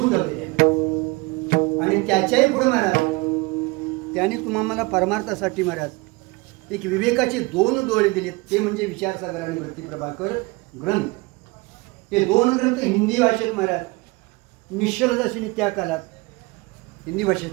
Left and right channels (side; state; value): left; quieter; 24.7 dB